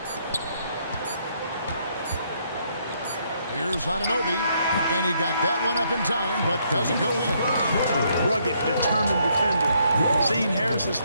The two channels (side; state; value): both; inverted; correlation -0.71